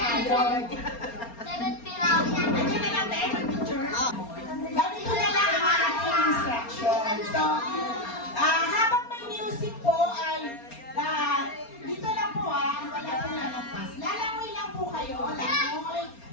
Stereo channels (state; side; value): late; right; 4.3 ms